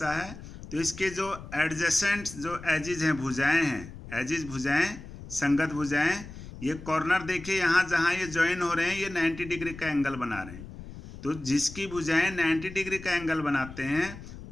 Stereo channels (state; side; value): noise; left; rumble, 14 dB below the sound